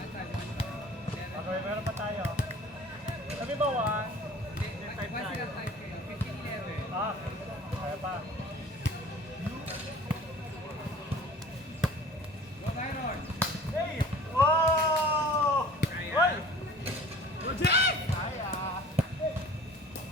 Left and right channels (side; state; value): both; normal; correlation 0.46